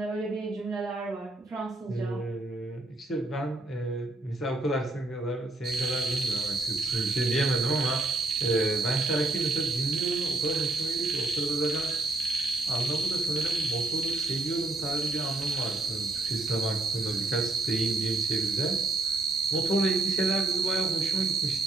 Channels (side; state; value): left; quieter; 3.1 dB